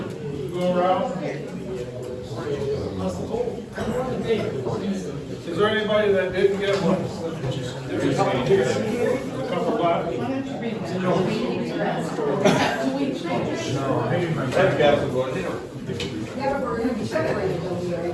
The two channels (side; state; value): both; identical; correlation 1.00